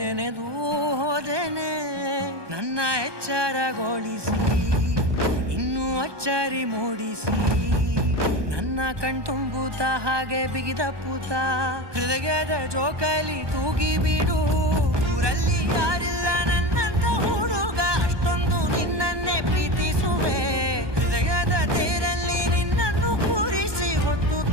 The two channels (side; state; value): left; late; 1.2 ms